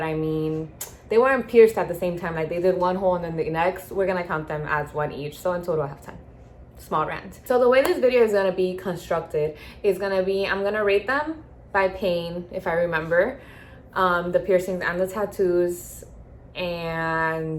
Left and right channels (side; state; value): both; identical; correlation 1.00